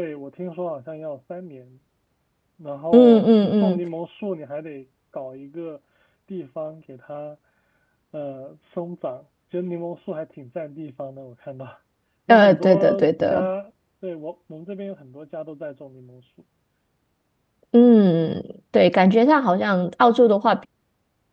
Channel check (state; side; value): identical; both; correlation 1.00